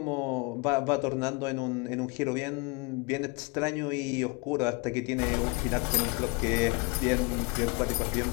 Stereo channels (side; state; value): right; quieter; 29.3 dB